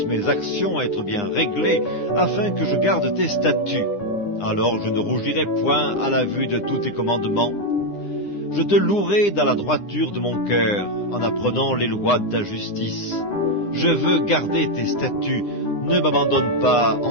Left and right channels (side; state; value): right; late; 9.8 ms